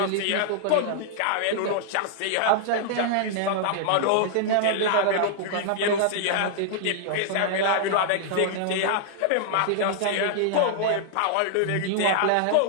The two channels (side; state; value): both; different; correlation -0.01